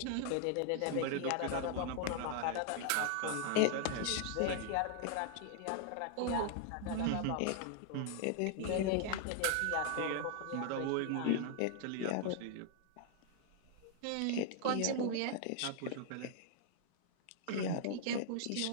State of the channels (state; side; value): different; both; correlation 0.00